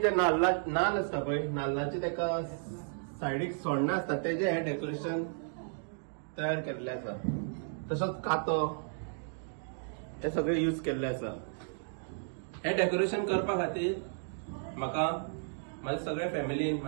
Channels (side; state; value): left; silent; digital silence